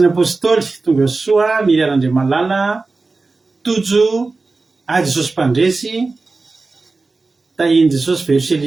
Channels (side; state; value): left; quieter; 3.8 dB